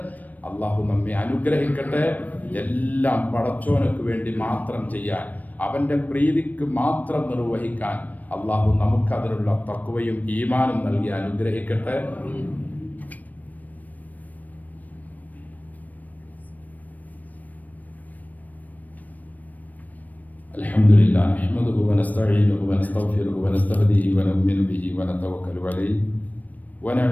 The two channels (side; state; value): right; late; 0.079 ms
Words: അള്ളാഹു നമ്മെ അനുഗ്രഹിക്കട്ടെ. എല്ലാം പടച്ചോനക്ക് വേണ്ടി മാത്രം ചെയ്യാൻ, അവൻ്റെ പ്രീതിക്ക് മാത്രം നിർവഹിക്കാൻ അള്ളാഹു നമുക്കതിനുള്ള തഖ്വയും ഈമാനും നൽകി അനുഗ്രഹിക്കട്ടെ. അൽഹംദുലില്ലാ നഹ്മദുഹു വനസ്തഈനുഹു വനസ്തഗ്ഫിറുഹു വനസ്തഹ്ദിഹി വനുഅ്മിനു ബിഹി വനതവക്കലു അലൈഹി